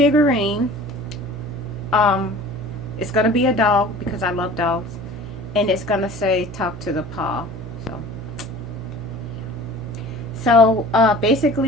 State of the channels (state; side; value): noise; right; hum, 13 dB below the sound